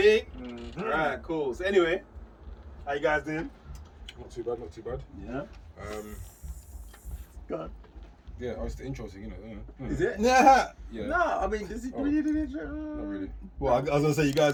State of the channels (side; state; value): both; identical; correlation 1.00